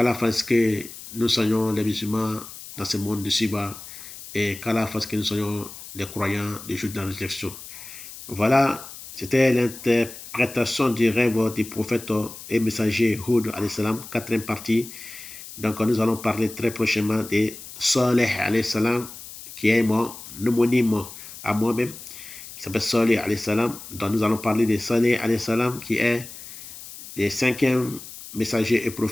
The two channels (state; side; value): noise; left; hiss, 14 dB below the sound